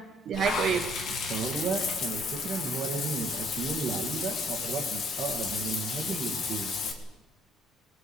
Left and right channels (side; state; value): both; normal; correlation 0.62